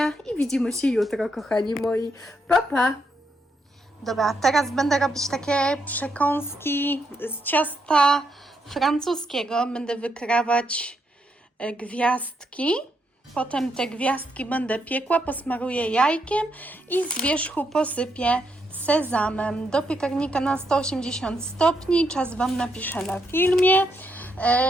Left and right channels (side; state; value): both; normal; correlation 0.79